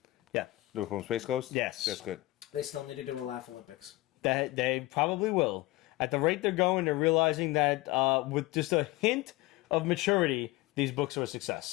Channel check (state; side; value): quieter; right; 19.4 dB